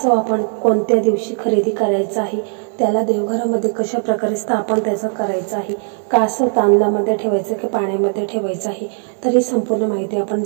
आपण कोणत्या दिवशी खरेदी करायचा आहे, त्याला देवघरामध्ये कशा प्रकारे स्थापन त्याचं करायचं आहे, कासव तांदळामध्ये ठेवायचं की पाण्यामध्ये ठेवायचं आहे, तर ही संपूर्ण माहिती आपण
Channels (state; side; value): silent; left; 62 dB below the other